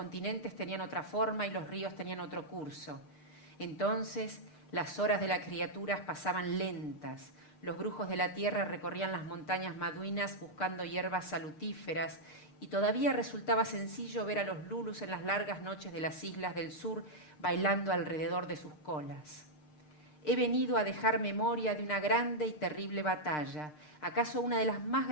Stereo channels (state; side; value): late; right; 6.6 ms